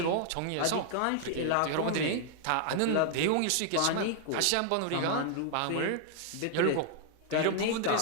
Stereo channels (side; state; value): both; different; correlation 0.00